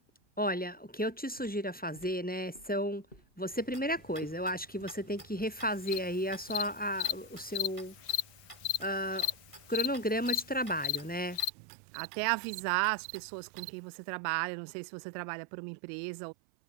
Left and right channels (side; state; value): left; drops out; at 11.5 s